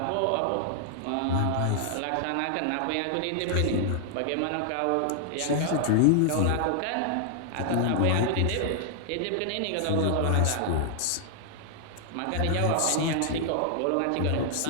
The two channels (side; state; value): both; different; correlation 0.00